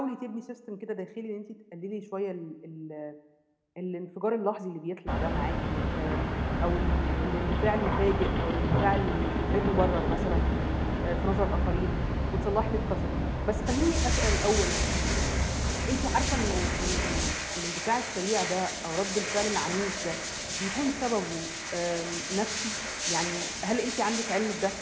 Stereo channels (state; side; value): identical; both; correlation 1.00